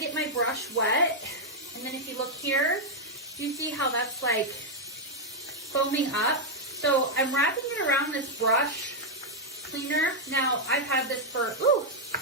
my brush wet, and then if you look here, you see how that's like foaming up. So I'm wrapping it around this brush cleaner. Now I've had this for,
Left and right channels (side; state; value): both; normal; correlation -0.02